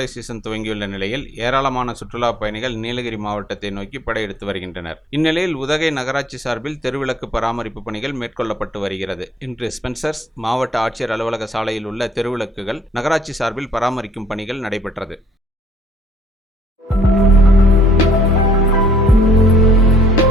சீசன் துவங்கியுள்ள நிலையில் ஏராளமான சுற்றுலா பயணிகள் நீலகிரி மாவட்டத்தை நோக்கி படையெடுத்து வருகின்றனர். இந்நிலையில் உதகை நகராட்சி சார்பில் தெருவிளக்கு பராமரிப்பு பணிகள் மேற்கொள்ளப்பட்டு வருகிறது. இன்று ஸ்பென்சர்ஸ் மாவட்ட ஆட்சியர் அலுவலக சாலையில் உள்ள தெருவிளக்குகள் நகராட்சி சார்பில் பராமரிக்கும் பணிகள் நடைபெற்றது.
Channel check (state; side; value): normal; both; correlation 0.62